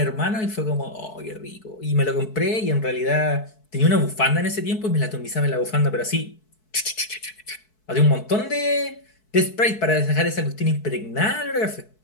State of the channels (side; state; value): right; late; 4.6 ms